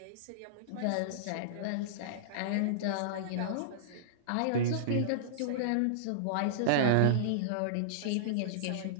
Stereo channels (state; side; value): different; both; correlation -0.03